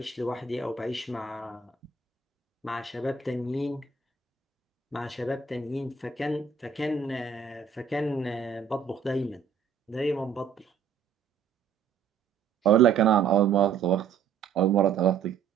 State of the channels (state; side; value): quieter; left; 6.5 dB